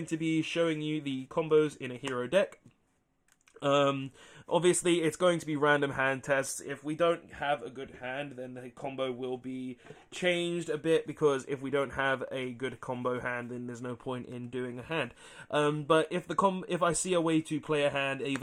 to be showing you the combos in a hero deck. Obviously it's going to be random hand tests. If we don't have a good hand, then the combo will be changed a bit, because if we don't have a good combo hand, then there's no point in doing a hand. But if I see a way to play a hand,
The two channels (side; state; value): both; identical; correlation 1.00